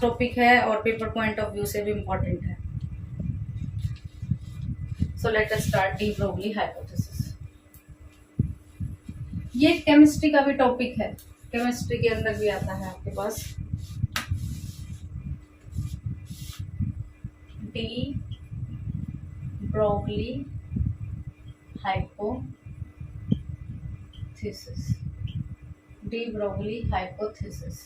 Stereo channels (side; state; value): both; identical; correlation 1.00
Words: टॉपिक है और पेपर पॉइंट ऑफ व्यू से भी इम्पोर्टेंट है। So let us start D Broglie hypothesis. ये केमिस्ट्री का भी टॉपिक है, केमिस्ट्री के अंदर भी आता है आपके पास। De Broglie hypothesis, de Broglie hypothesis.